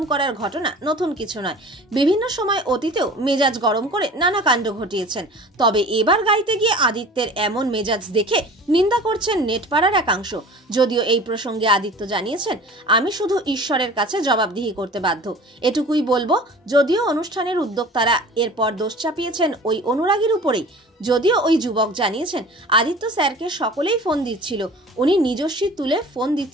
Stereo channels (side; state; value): both; normal; correlation 0.42